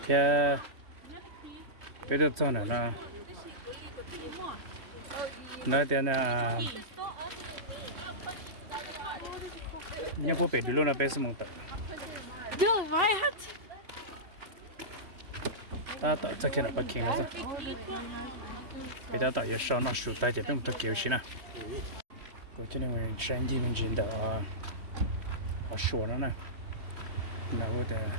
别都早了呢。那天呢，你不背对了那呗是蒙的。Yo, vai hat. Ta ta ta kena pa kena sa. Kita ta ya sha na shu ta je bim ta kyo shi na. Ko chene wen shan ji min jin da a shu na na. Na wo de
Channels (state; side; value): late; left; 3.1 ms